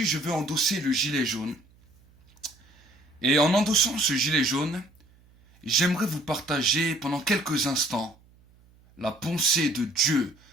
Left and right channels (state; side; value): noise; right; hum, 29 dB below the sound